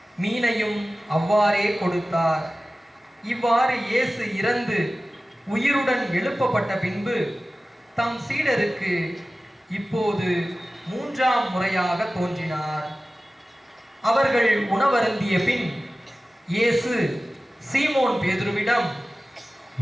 மீனையும் அவ்வாறே கொடுத்தார். இவ்வாறு இயேசு இறந்து உயிருடன் எழுப்பப்பட்ட பின்பு தம் சீடருக்கு இப்போது 3ஆம் முறையாக தோன்றினார். அவர்கள் உணவருந்திய பின் இயேசு சீமோன் பேதுருவிடம்,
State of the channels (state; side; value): normal; both; correlation 0.96